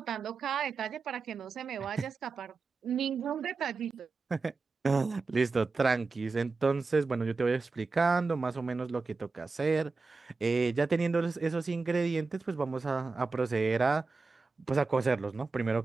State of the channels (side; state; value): left; quieter; 4.1 dB